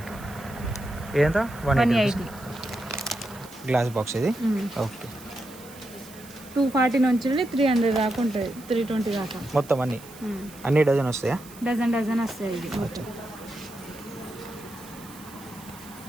ఇదంత 180. గ్లాస్ బాక్స్ ఇది. ఓకే 240 నుంచి 300 దాకా ఉంటుంది, 320 దాకా మొత్తం అన్ని డజన్ వస్తాయా? డజన్ వస్తాయి ఇది మొత్తం.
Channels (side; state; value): right; noise; hiss, 20 dB below the sound